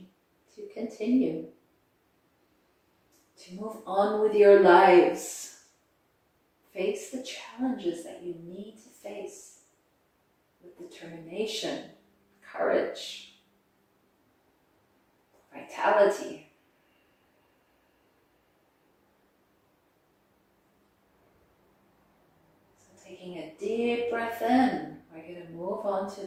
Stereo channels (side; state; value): both; identical; correlation 1.00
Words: to continue, to move on with your lives, face the challenges that you need to face with determination, courage, vitality. taking a deep breath in, we're going to move on to